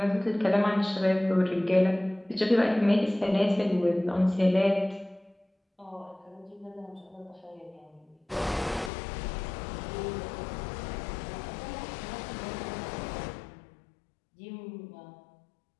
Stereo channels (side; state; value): right; drops out; at 8.9 s